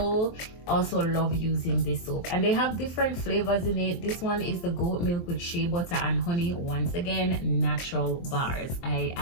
love using this soap, and they have different flavors in it. This one is the goat milk with shea butter and honey. Once again, natural bars.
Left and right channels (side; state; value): right; late; 23 ms